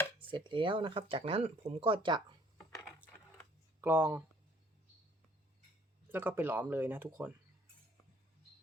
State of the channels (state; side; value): normal; both; correlation 0.60